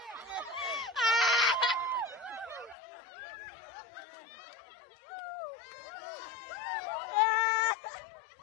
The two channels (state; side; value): drops out; right; at 2.8 s